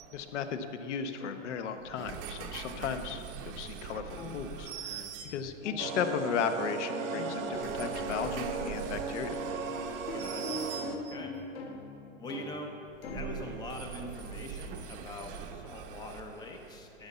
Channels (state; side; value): normal; both; correlation 0.17